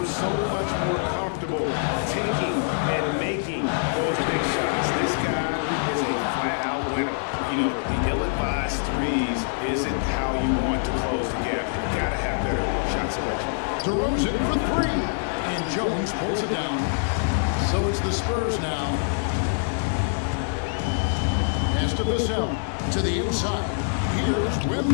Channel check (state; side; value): silent; right; digital silence